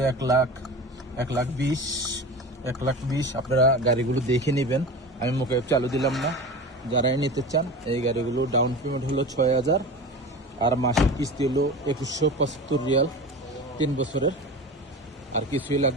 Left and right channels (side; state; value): both; normal; correlation 0.31